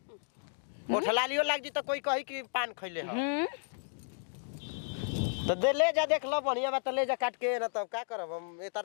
ओठलालियो लाग जी तो कोई कही कि पान खइले ह तो दे ले जा देख लो बढ़िया बात ले जा काट के ना तब का करब हम ए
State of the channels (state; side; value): silent; right; 56 dB below the other